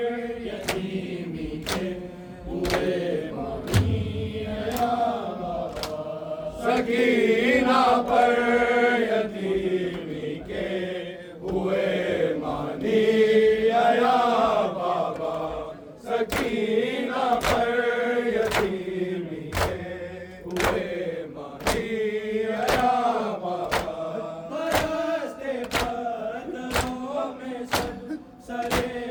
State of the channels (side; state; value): both; identical; correlation 1.00